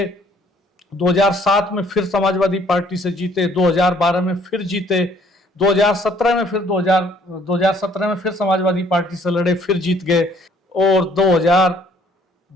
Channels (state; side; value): normal; both; correlation 0.61